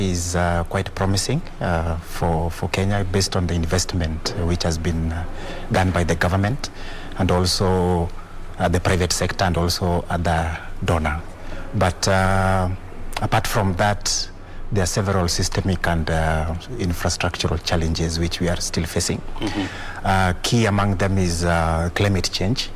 quite promising for Kenya, based on the investment which has been done by the government and also the private sector and also other donor. But apart from that, there are several systemic and infrastructural challenges which we are still facing. Key among them is climate change.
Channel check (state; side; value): identical; both; correlation 1.00